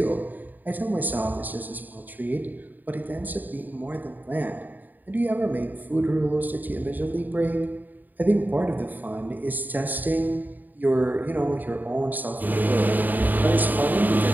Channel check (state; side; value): late; left; 0.086 ms